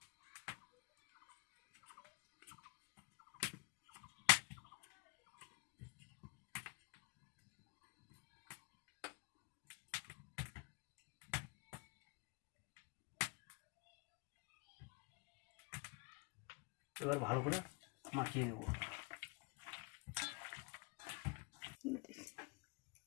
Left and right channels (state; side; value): quieter; right; 30.6 dB